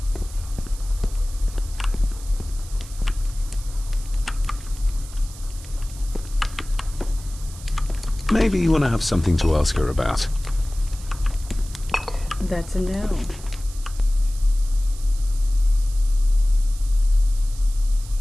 Maybe you want to have something to ask her about. That's a no.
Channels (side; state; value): right; noise; hiss, 18 dB below the sound